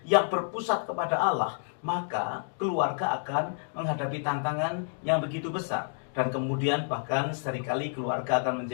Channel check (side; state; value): right; silent; digital silence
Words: yang berpusat kepada Allah, maka keluarga akan menghadapi tantangan yang begitu besar. Dan kemudian bahkan seringkali keluarga akan